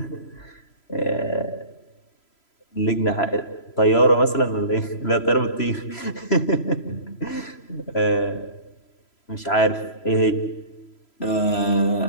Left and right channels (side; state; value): right; late; 3.0 ms